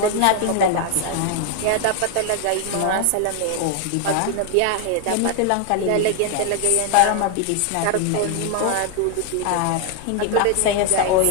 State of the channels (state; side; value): different; both; correlation 0.00